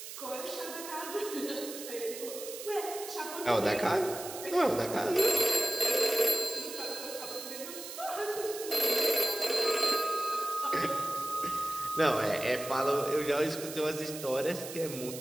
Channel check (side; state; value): right; noise; hiss, 10 dB below the sound